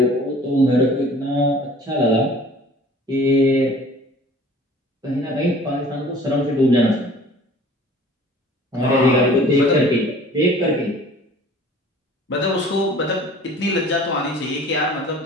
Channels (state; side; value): normal; both; correlation 0.48